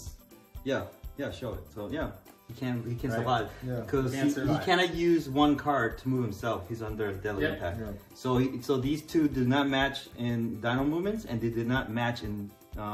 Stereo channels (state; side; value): identical; both; correlation 1.00